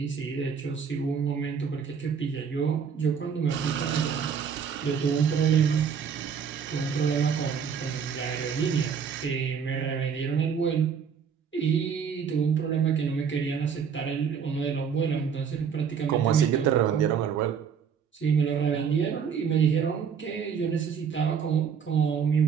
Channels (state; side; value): quieter; left; 6.9 dB